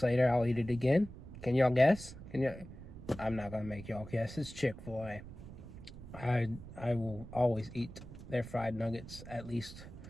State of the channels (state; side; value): noise; right; rumble, 14 dB below the sound